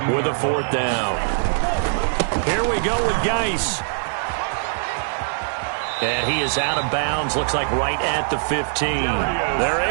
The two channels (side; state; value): left; silent; digital silence